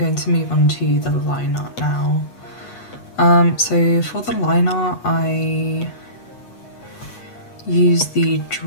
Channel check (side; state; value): right; late; 8.2 ms